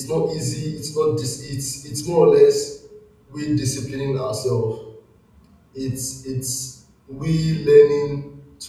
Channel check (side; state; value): both; identical; correlation 1.00